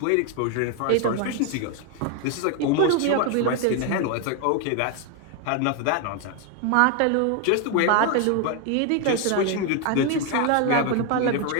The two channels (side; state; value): both; different; correlation 0.01